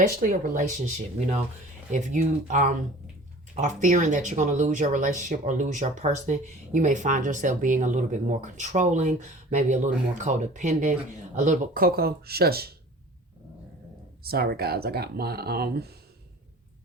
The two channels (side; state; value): both; normal; correlation 0.44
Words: a relationship. If you are fearing that you're going to lose your relationship or lose your person, you may find yourself being a little bit more controlling, maybe a little more codependent, a little bit. Coco, shush. Sorry, guys, I got my